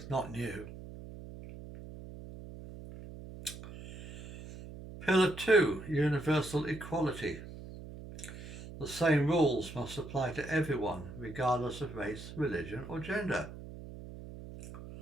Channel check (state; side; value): noise; right; hum, 12 dB below the sound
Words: not new. Pillar 2, universal equality. The same rules must apply to everyone, regardless of race, religion or gender.